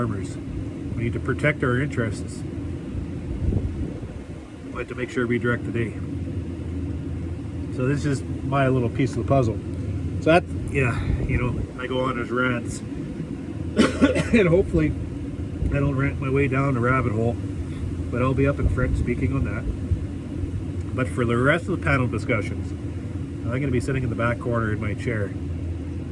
We need to protect our interests, but to make sure we direct the day. So this is my little piece of the puzzle. So that, I go on as rants, and hopefully I don't rant my way down a rabbit hole, but I'll be up in front speaking on that. But for the rest of the panel discussions, I'm going to be sitting in the back corner in my chair,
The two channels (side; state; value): both; identical; correlation 1.00